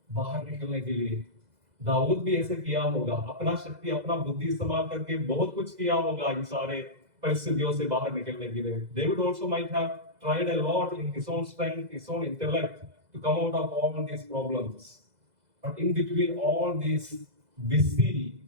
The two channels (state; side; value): late; left; 2.0 ms